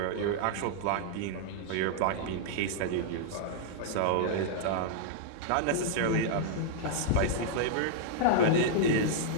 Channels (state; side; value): different; both; correlation -0.01